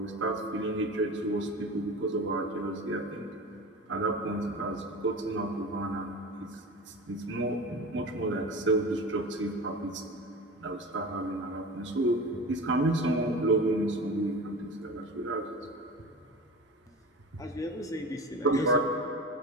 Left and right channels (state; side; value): normal; both; correlation 0.32